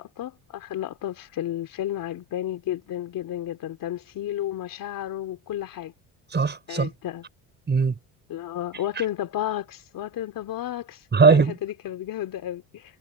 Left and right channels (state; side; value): normal; both; correlation 0.12